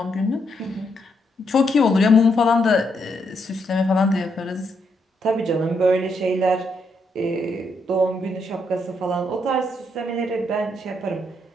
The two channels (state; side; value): normal; both; correlation 0.77